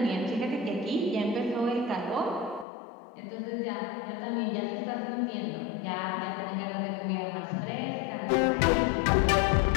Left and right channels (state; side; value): drops out; right; at 2.7 s